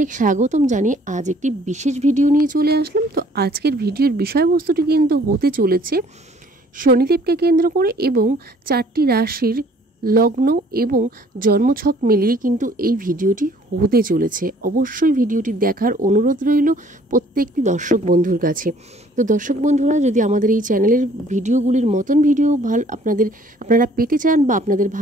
স্বাগতম জানিয়ে আজ একটি বিশেষ ভিডিও নিয়ে চলে আসলাম। তো আজকের ভিডিওর বিষয়বস্তুটি কিন্তু হতে চলেছে শনিদেবকে কেন্দ্র করে এবং 4টি রাশির লগ্ন এবং জন্মছক মিলিয়ে কিন্তু এই ভিডিওটি হতে চলেছে। অবশ্যই ভিডিওটি দেখার অনুরোধ রইল প্রত্যেকটি দর্শক বন্ধুর কাছে। তো দর্শক বন্ধুরা, যদি আমাদের এই চ্যানেলের ভিডিওগুলির মতন ভিডিও আপনারা পেতে চান বা আপনাদের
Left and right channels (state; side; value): normal; both; correlation 0.57